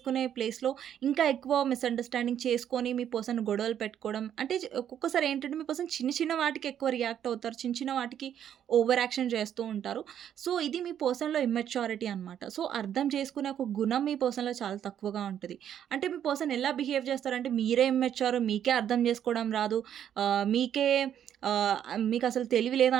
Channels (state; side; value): quieter; left; 9.8 dB